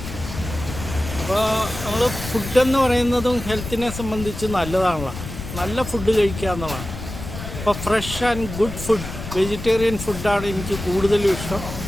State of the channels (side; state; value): left; noise; rumble, 9 dB below the sound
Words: അപ്പോൾ നമ്മൾ ഫുഡെന്ന് പറയുന്നതും ഹെൽത്തിനെ സംബന്ധിച്ച് നല്ലതാണല്ലോ. നല്ല ഫുഡ് കഴിക്കുക എന്നുള്ളതാണ്. അപ്പോൾ fresh and good food, vegetarian ഫുഡാണ് എനിക്ക് കൂടുതലും ഇഷ്ടം.